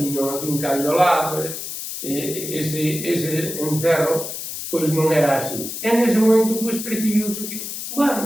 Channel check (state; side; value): noise; left; hiss, 7 dB below the sound